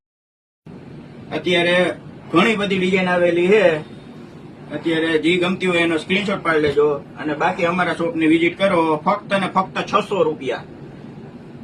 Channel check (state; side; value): identical; both; correlation 1.00